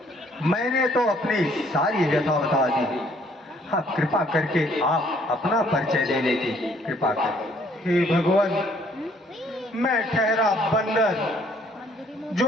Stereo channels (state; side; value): normal; both; correlation 0.63